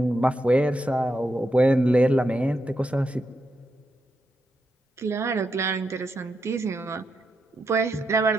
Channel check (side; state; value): both; normal; correlation 0.84